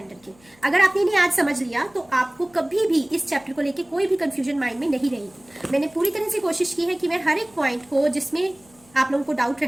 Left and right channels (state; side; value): noise; left; hum, 30 dB below the sound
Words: के। अगर आपने इन्हें आज समझ लिया तो आपको कभी भी इस चैप्टर को लेके कोई भी कंफ्यूजन माइंड में नहीं रहेगी। मैंने पूरी तरह से कोशिश की है कि मैं हर एक पॉइंट को जिसमें आप लोगों को डाउट